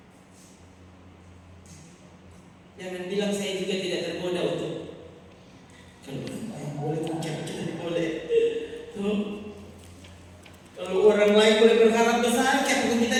Jangan bilang saya juga tidak tergoda untuk kalau boleh puncak kita boleh. Kalau orang lain boleh berharap besar, kenapa kita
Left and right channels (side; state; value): both; identical; correlation 1.00